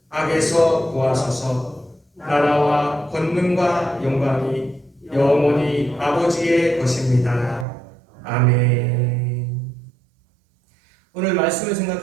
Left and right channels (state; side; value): drops out; left; at 7.7 s